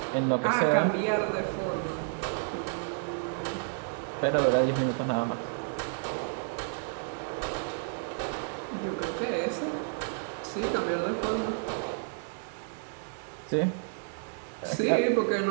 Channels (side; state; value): left; silent; digital silence